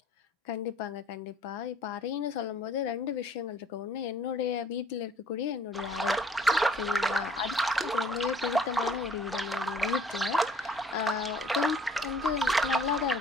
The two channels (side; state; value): both; normal; correlation 0.56